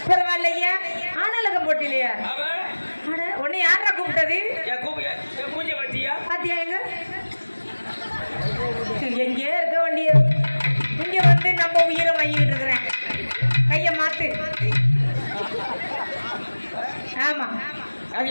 பரவாயில்லையா? ஆனாலக போட்டிலையா? உன்னை யாரா கூப்பிட்டது? மூஞ்ச பாத்தியா? பாத்தியா எங்க எங்கே இருக்க வண்டிய இங்க வந்து நம்ம உயிரை வாங்கிட்டு இருக்கிறேன். கைய மாத்து. ஆமா அது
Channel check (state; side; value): inverted; both; correlation -1.00